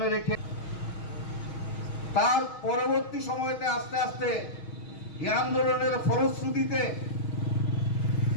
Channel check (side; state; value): right; late; 6.3 ms